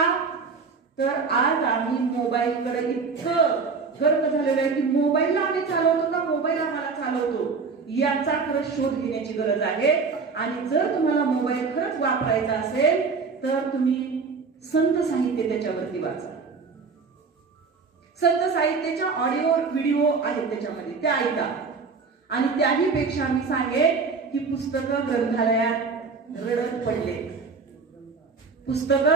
तर आज आम्ही मोबाईलकडे इतकं गर्क झालेलं आहे की मोबाईलला आम्ही चालवतो का मोबाईल आम्हाला चालवतो याचा खरंच शोध घेण्याची गरज आहे. आणि जर तुम्हाला मोबाईल खरंच वापरायचा असेल तर तुम्ही संत साहित्य त्याच्यावरती वाचा. संत साहित्याच्या ऑडिओ व्हिडिओ आहेत त्याच्यामध्ये, त्या ऐका. आणि त्याही पेक्षा मी सांगेन की पुस्तकं ग्रंथालयात रडत पडले,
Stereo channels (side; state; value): left; quieter; 4.8 dB